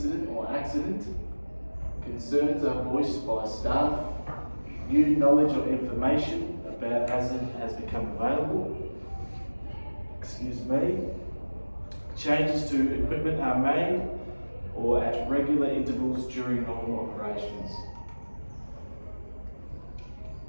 or accident, concerns are voiced by staff, new knowledge or information about hazard has become available, changes to equipment are made or at regular intervals during normal operations.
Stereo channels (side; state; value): both; inverted; correlation -1.00